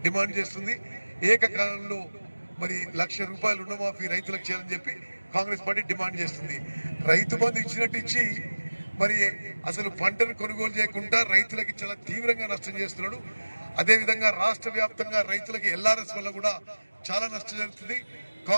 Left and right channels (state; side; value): inverted; both; correlation -1.00